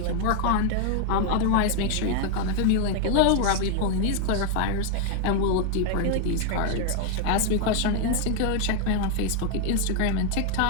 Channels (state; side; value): different; both; correlation 0.00